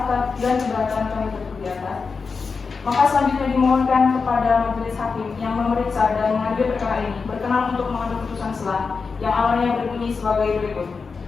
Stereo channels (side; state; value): right; quieter; 4.9 dB